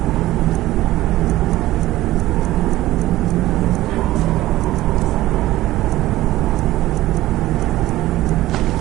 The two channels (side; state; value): left; quieter; 16.1 dB